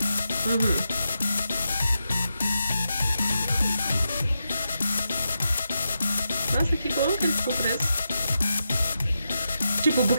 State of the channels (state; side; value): inverted; both; correlation -0.87